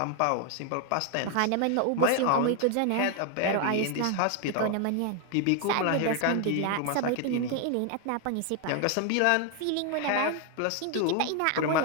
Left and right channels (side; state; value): both; different; correlation 0.00